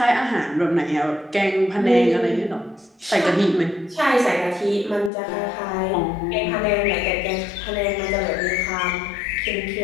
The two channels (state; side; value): drops out; right; at 5.1 s